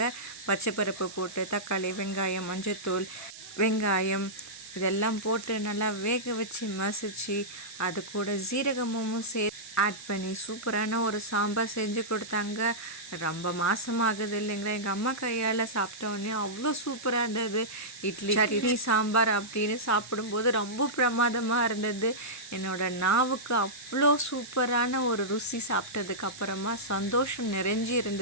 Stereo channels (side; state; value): right; noise; hiss, 15 dB below the sound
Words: பச்சைப்பருப்பு போட்டு தக்காளி, வெங்காயம், மஞ்சத்தூள், வெங்காயம் இதெல்லாம் போட்டு நல்லா வேக வச்சு மசிச்சு அது கூட ஜீரகமும் ஆட் பண்ணி சூப்பரான ஒரு சாம்பார் செஞ்சு கொடுத்தாங்க. ரொம்ப மாதமாகுது இல்லைங்களா, எங்கள் அம்மா கையால் சாப்பிட்டோன்னே அவ்வளோ சூப்பராக இருந்தது. இட்லி சட்னி சாம்பார் அப்படின்னு சாப்பிடும்போது ரொம்ப பிரமாதமாக இருந்தது. என்னோடய நாவுக்கு அவ்வளோ சூப்பரான ஒரு ருசி. சாப்பிட்டதுக்கு அப்புறமா சந்தோஷம் நிறைஞ்சி